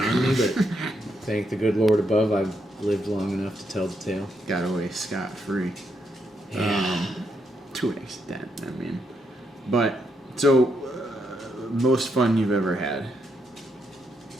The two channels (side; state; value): both; normal; correlation 0.79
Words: me, but thank the good Lord above, I've lived long enough to tell the tale. Got away scot-free. Yeah. To an extent, I mean. But, so, most fun you've ever had?